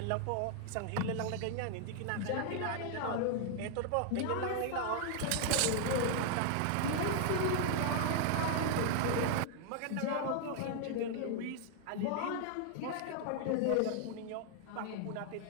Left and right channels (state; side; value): different; both; correlation 0.00